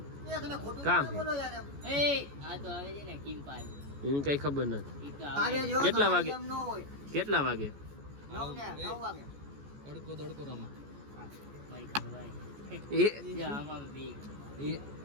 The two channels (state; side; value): late; left; 14 ms